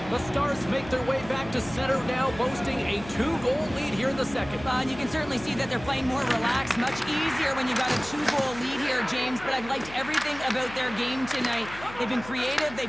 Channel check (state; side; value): noise; left; hum, 16 dB below the sound